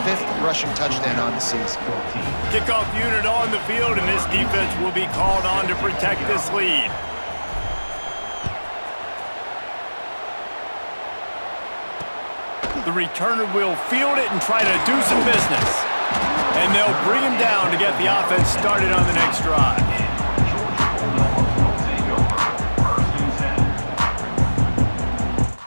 5th rushing touchdown on the season. Kickoff unit on the field, and this defense will be called on to protect this lead. The returner will field it and try to do some business. And they'll bring him down to get the offense started on the next drive.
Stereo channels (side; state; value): both; inverted; correlation -1.00